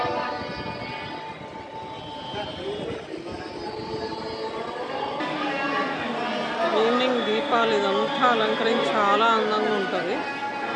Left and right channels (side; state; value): both; identical; correlation 1.00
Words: ఈవినింగ్ దీపాలు ఇదంతా అలంకరించి చాలా అందంగా ఉంటుంది.